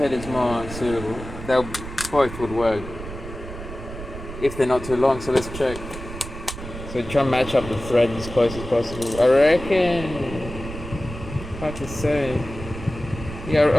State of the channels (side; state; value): right; noise; rumble, 11 dB below the sound